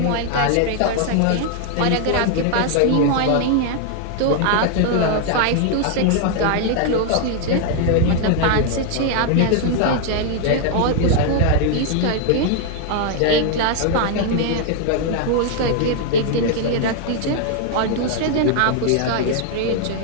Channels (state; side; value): different; both; correlation 0.00